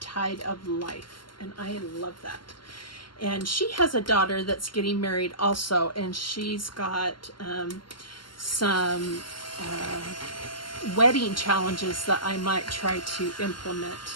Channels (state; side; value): late; right; 0.72 ms